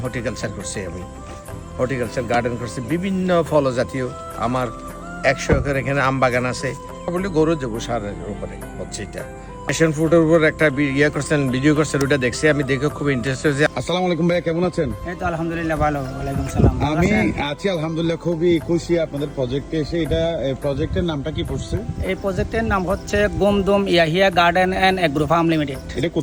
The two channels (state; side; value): identical; both; correlation 1.00